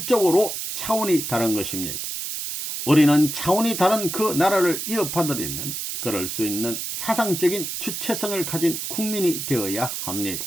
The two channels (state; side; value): noise; right; hiss, 5 dB below the sound